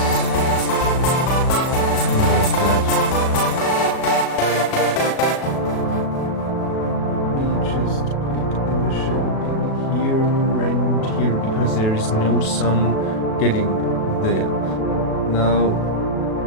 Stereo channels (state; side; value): late; right; 37 ms